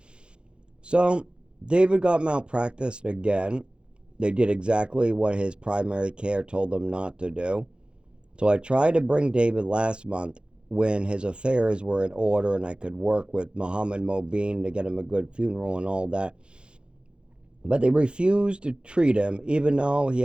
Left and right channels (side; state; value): left; late; 0.054 ms